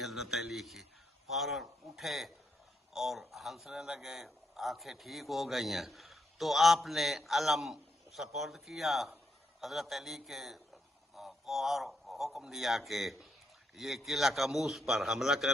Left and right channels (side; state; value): both; normal; correlation 0.79